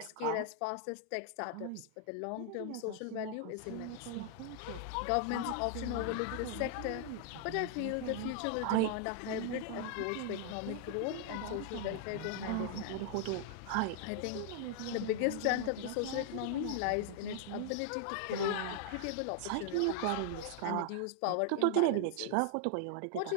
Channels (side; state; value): both; different; correlation 0.00